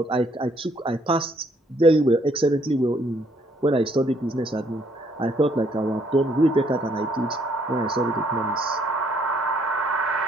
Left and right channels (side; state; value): both; normal; correlation 0.67